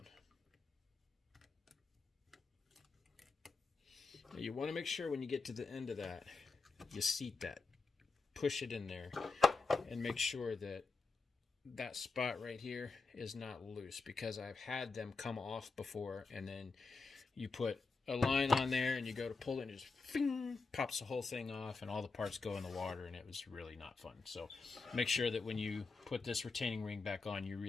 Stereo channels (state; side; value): quieter; right; 4.1 dB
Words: Now you want to make sure when you get to the end of that, you seat that. Push it in there and make sure that that spot right here is not loose, because I've had them come off before, and then you put a line on there and you go to pull it and it just fing, pops the whole thing off and all the parts go in the water, and it was really not fun. So make sure that when you put this retaining ring back on, you